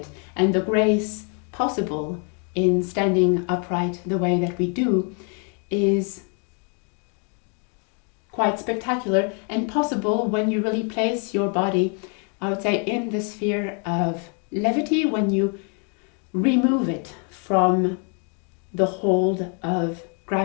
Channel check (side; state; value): right; quieter; 38.8 dB